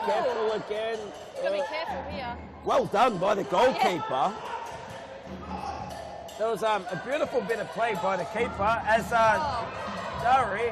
careful again. Gotta be careful here. Well done by the goalkeeper. There was a beautiful bit of play by the keeper as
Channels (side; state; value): both; identical; correlation 1.00